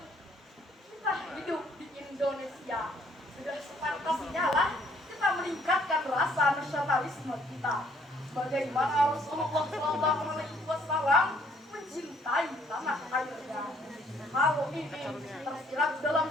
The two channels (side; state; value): both; normal; correlation 0.64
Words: Kita hidup di Indonesia. Sudah sepantasnya lah kita meningkatkan rasa nasionalisme kita. Bagaimana Rasulullah SAW mencintai tanah airnya. Hal ini tersirat dalam